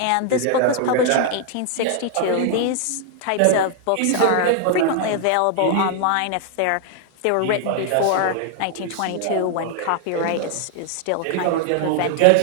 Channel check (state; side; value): different; both; correlation 0.00